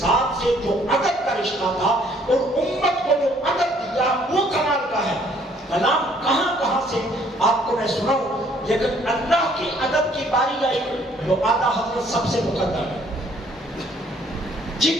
سے جو ادب کا رشتہ تھا اور امت کو جو ادب دیا وہ کمال کا ہے۔ کلام کہاں کہاں سے آپ کو میں سناؤں، لیکن اللہ کے ادب کی باری آئی جو آقا حضرت سب سے مقدم ہے۔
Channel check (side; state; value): both; normal; correlation 0.62